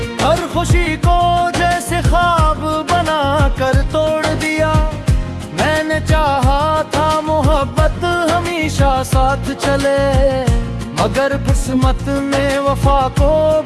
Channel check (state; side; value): identical; both; correlation 1.00